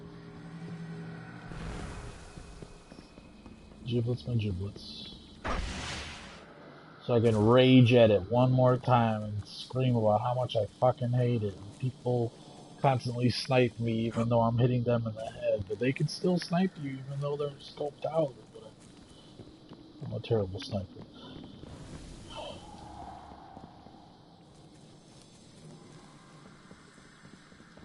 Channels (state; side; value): identical; both; correlation 1.00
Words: Giblets my giblets. So I can rage at it one more time and scream about how much I fucking hate it. And people constantly snipe me even though I'm hitting them in the head. But they can still snipe you even though they're scoped out. But I'm a terrible sniper.